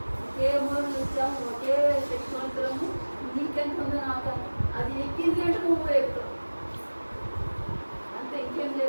ఒకే మూల నుంచి వచ్చాము, ఒకే శక్తివంతులము. నీకెంత ఉందో నాకు అది ఎక్కింది అంటే నువ్వు ఎక్కుతావు అంతే, ఇంకేం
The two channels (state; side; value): inverted; both; correlation -1.00